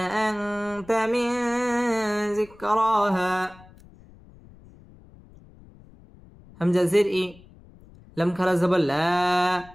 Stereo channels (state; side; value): noise; left; rumble, 23 dB below the sound